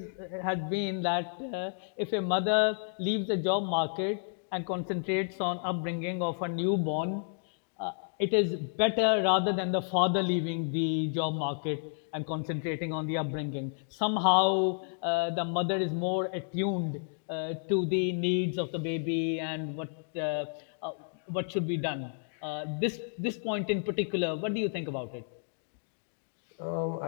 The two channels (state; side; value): silent; right; 57 dB below the other